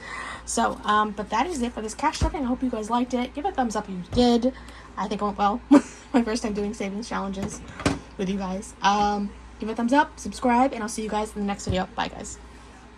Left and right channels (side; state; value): both; identical; correlation 1.00